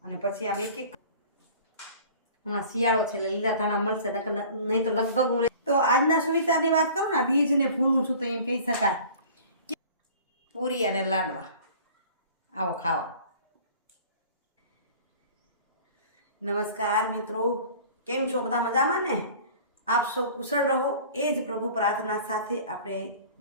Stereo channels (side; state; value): both; inverted; correlation -0.45